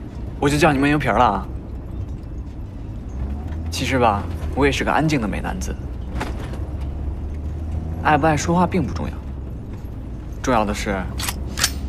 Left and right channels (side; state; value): both; identical; correlation 1.00